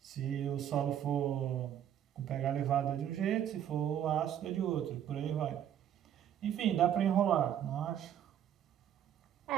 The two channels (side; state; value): left; quieter; 10.1 dB